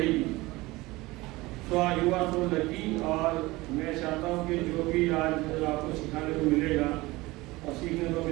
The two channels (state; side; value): quieter; left; 20.8 dB